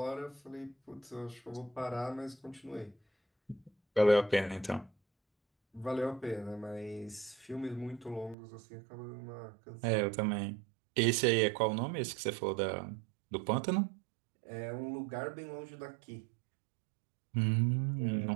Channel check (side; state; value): left; drops out; at 8.3 s